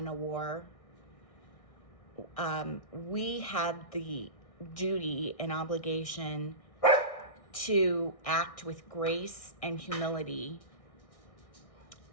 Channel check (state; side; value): late; right; 1.6 ms